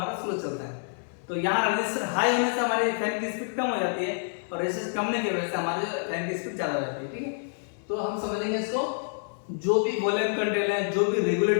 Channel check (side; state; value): right; silent; 60 dB below the other